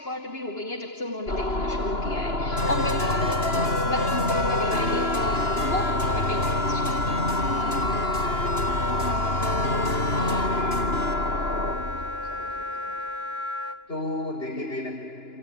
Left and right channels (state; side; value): late; right; 2.9 ms